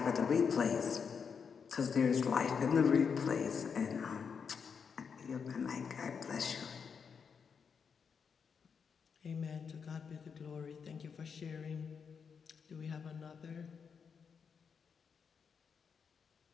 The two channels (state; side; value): quieter; right; 6.3 dB